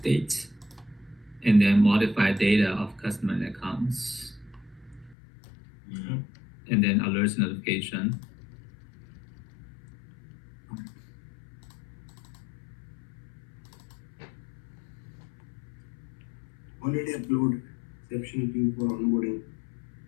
and then modify data of customer and accounts, and then alerts notification. Already upload exception queue for onboarding.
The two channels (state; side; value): drops out; right; at 5.2 s